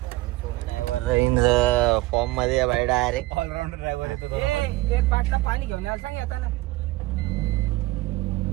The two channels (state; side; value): quieter; left; 19.8 dB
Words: सोना ड्रायव्हर फॉर्म मध्ये बाय डायरेक्ट ऑलराऊंडर ड्रायव्हर येतो. एक बाटला पाणी घेऊन यायला सांग येताना.